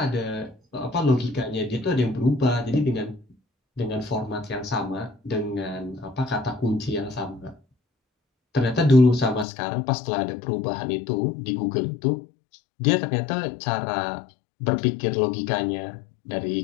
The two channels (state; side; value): drops out; right; at 9.5 s